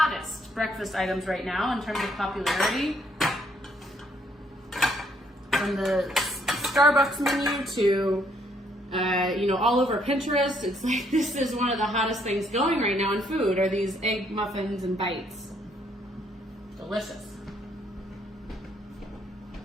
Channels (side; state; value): both; normal; correlation 0.69